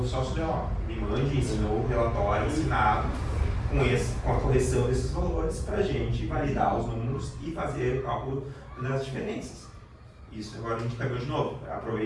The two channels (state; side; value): identical; both; correlation 1.00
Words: só se me mande, ensinou o relatório assinado com a correção desses valores para a gente validar os números e fazer o cálculo das diferenças. Isso agora a gente pegou de novo.